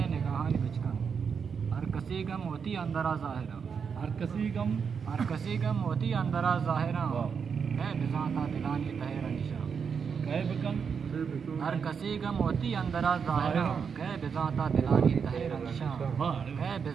نگاہانی بچکن ہر کسی گم ہوتی اندرا ظاہرہ ہر کسی گم ہوتی اندرا ظاہرہ اے بزانتا دلانی تہر نشا ہر کسی گم ہوتی اندرا ظاہرہ کہ بزانتا دلانی تہر نشا کہ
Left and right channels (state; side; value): quieter; left; 6.4 dB